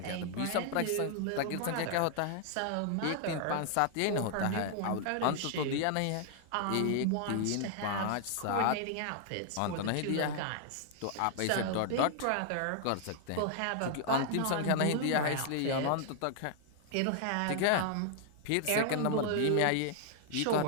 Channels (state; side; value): different; both; correlation 0.00